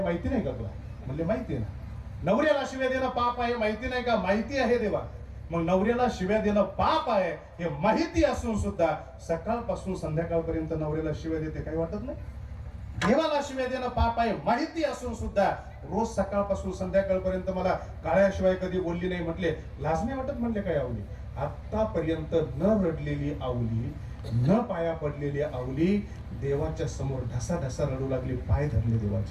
माहिती नाही का तुला. म्हणले माहिती आहे ना. नवऱ्याला शिव्या देणं पाप आहे, माहिती नाही का. माहिती आहे देवा. मग नवऱ्याला शिव्या देणं पाप आहे हे माहिती असून सुद्धा सकाळपासून संध्याकाळपर्यंत नवऱ्याला शिव्या देते, काही वाटत नाही. देवाला शिव्या देणं पाप आहे माहिती असून सुद्धा रोज सकाळपासून संध्याकाळपर्यंत मला काळ्याशिवाय कधी बोलली नाही. म्हटले लाज नाही वाटत म्हणले काय आवली. आतापर्यंत न रडलेली आवली, न पाया पडलेली आवली देवाच्या समोर ढसा ढसा रडू लागली, पाय धरले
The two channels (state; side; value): identical; both; correlation 1.00